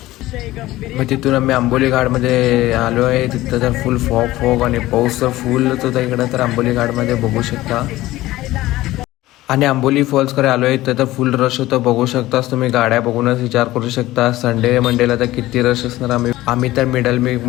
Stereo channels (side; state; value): right; quieter; 16.8 dB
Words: मग तिथून आम्ही आंबोली घाटमध्ये आलो आहे. तिथं तर फुल फॉग आणि पाऊस तर फुलच होता इकडं तर आंबोली घाटमध्ये बघू शकता. आणि आंबोली फॉल्सकडे आलो आहे तर फुल रश होतं बघू शकताच तुम्ही. गाड्या बघूनच विचार करू शकता संडे मंडेला तर किती रश असणार. आम्ही तर मिडल